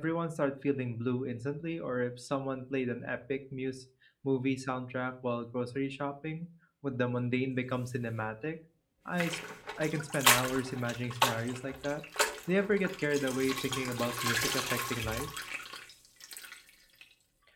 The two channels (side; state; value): both; identical; correlation 1.00